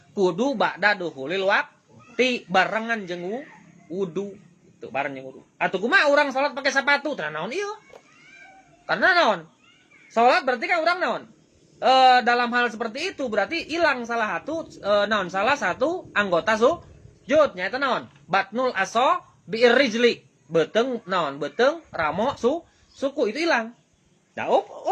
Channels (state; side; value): identical; both; correlation 1.00